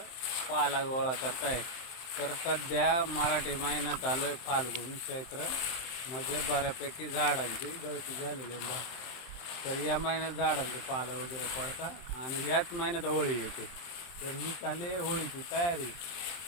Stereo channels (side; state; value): right; late; 23 ms